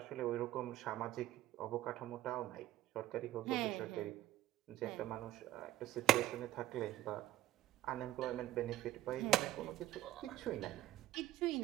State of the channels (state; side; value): quieter; left; 13.8 dB